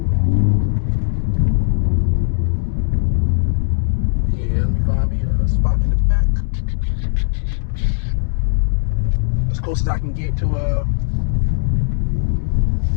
let me find me a spot in the back as close as I can get to it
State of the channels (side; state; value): right; silent; digital silence